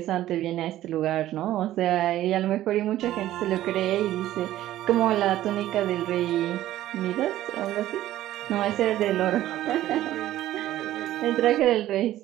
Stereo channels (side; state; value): left; quieter; 13.9 dB